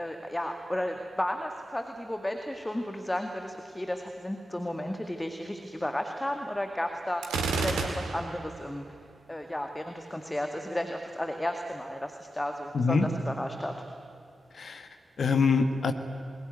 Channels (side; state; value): both; normal; correlation 0.89